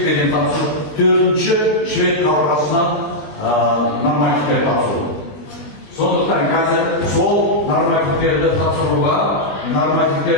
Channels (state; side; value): late; right; 20 ms